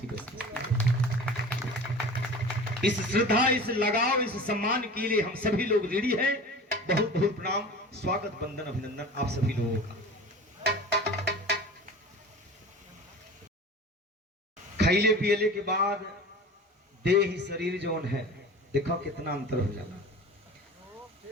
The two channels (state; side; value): normal; both; correlation 0.37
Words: में बसती है। इस श्रद्धा, इस लगाव, इस सम्मान के लिए हम सभी लोग रेडी हैं। बहुत बहुत प्रणाम, स्वागत, वंदन, अभिनंदन आप सभी लोगों का। खैले पियले के बाद देह शरीर जौन है, देखो कितना अंतर हो जाता।